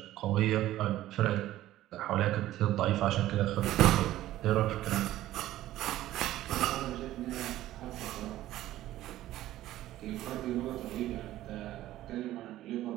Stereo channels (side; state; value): left; quieter; 14.5 dB